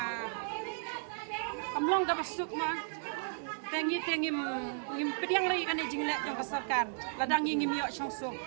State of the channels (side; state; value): left; silent; digital silence